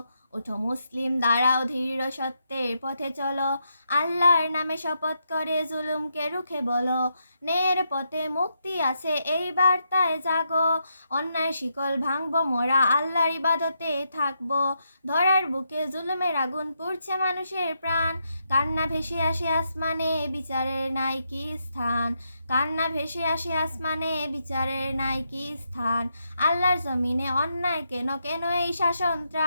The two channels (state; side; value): inverted; both; correlation -0.81